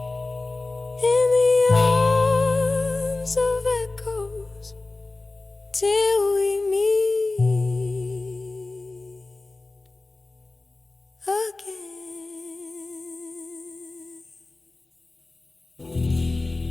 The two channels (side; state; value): right; quieter; 3.2 dB